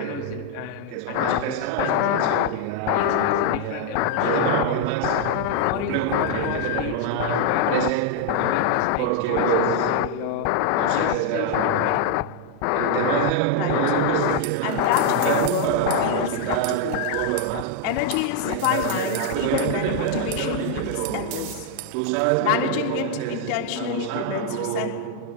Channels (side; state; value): both; different; correlation 0.00